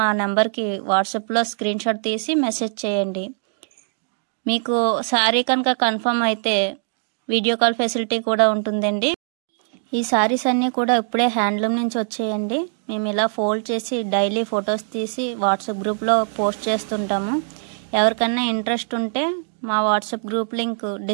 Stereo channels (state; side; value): silent; left; digital silence